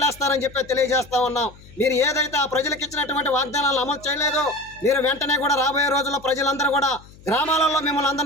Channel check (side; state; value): left; noise; hum, 22 dB below the sound